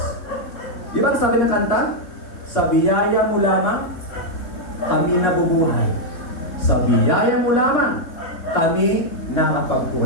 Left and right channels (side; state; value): right; late; 3.8 ms